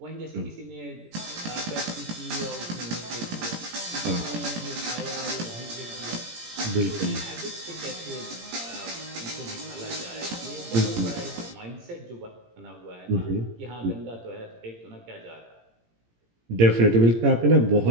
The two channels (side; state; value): left; late; 17 ms